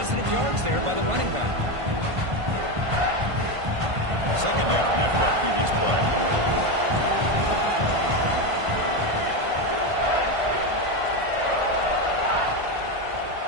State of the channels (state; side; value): late; left; 1.5 ms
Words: yards there by the running back. 2nd down after that previous play.